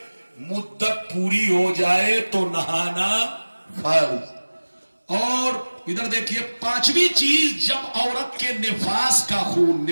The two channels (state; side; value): inverted; both; correlation -1.00